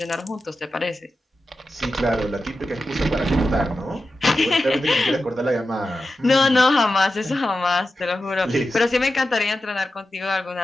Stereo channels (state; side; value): normal; both; correlation 0.92